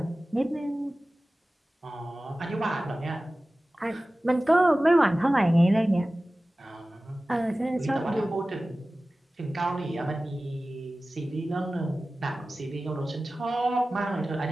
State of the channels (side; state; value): both; normal; correlation 0.96